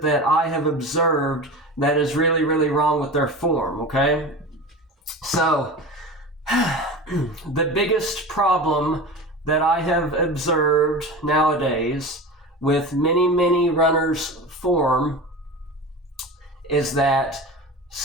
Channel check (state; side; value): normal; both; correlation 0.31